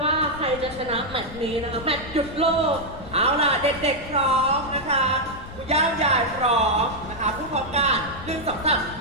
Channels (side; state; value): left; noise; rumble, 14 dB below the sound